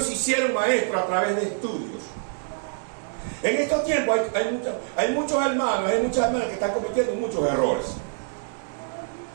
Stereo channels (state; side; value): silent; left; digital silence